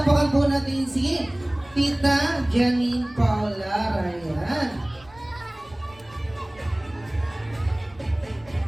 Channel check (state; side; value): noise; right; rumble, 25 dB below the sound